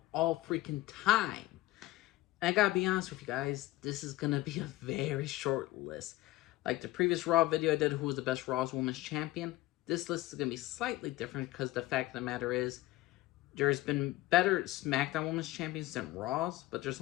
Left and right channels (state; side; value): quieter; right; 17.3 dB